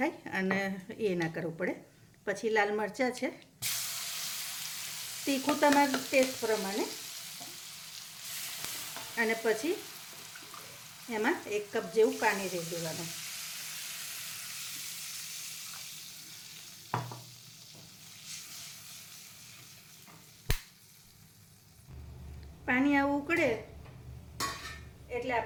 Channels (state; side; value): identical; both; correlation 1.00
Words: અને એ ના કરવું પડે. પછી લાલ મરચાં છે, તીખું તમારા ટેસ્ટ પ્રમાણે. અને પછી એમાં 1 કપ જેવું પાણી રેડી દેવાનું. પાણી આવું ઉકળે એટલે